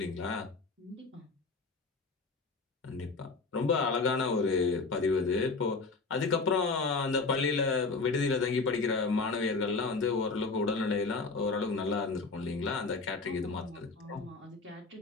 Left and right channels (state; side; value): quieter; right; 4.0 dB